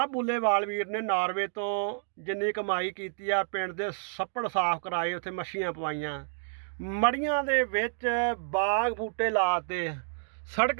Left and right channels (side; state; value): left; silent; digital silence